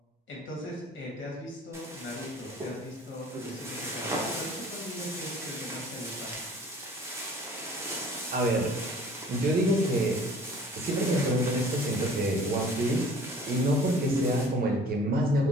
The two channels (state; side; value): normal; both; correlation 0.49